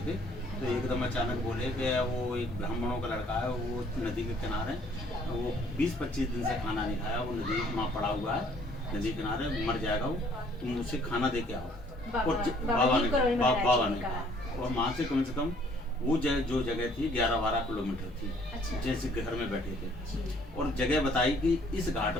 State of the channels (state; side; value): normal; both; correlation 0.61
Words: थे, तो एकदम अचानक बोले कि वो एक ब्राह्मणों का लड़का है, वो नदी के किनारे, वो 20-25 दिन से खाना नहीं खाया, वो नदी वहाँ पड़ा हुआ है, नदी किनारे मर जाएगा वो, तुम उससे खाना दे के आओ। और बाबा ने कहा। और वहाँ से कम वो जो जगह थी 11-12 किलोमीटर थी। अच्छा। जैसे घर में बैठे थे और जगह बताई कि इस घाट